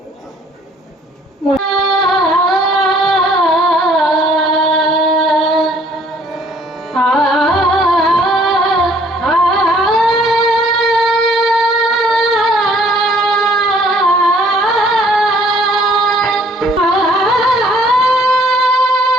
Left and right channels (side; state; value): both; normal; correlation 0.60